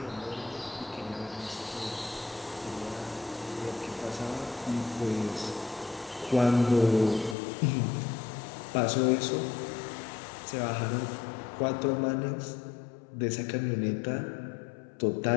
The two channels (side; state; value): right; drops out; at 7.4 s